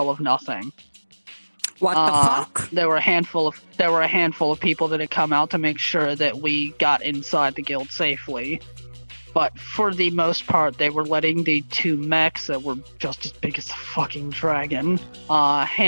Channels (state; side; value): inverted; both; correlation -1.00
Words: of nothing. What the fuck? There were a handful of people that had come out to make sure that we got inside the guild safely. But for the most part, they were letting the 2 mechs that were just as big as the fucking dragon